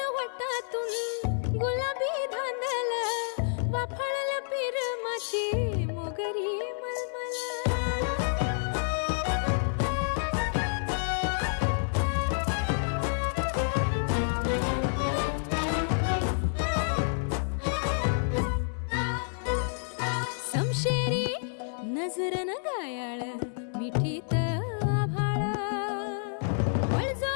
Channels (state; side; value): silent; right; 58 dB below the other